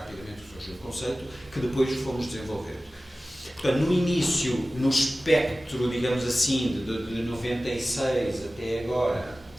que surgiu o conceito, que depois fomos desenvolvendo. Portanto, no início, no espectro, digamos assim, de 96 até agora,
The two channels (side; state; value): both; normal; correlation 0.96